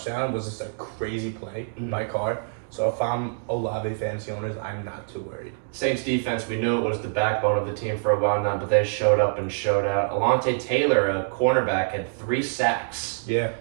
was just a crazy play by Carr. So if I'm Olave fantasy owners, I'm not too worried. Saints defense, we knew it was the backbone of the team for a while now, but they showed up and showed out. Alontae Taylor, a cornerback, had 3 sacks. Yeah,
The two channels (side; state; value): left; silent; digital silence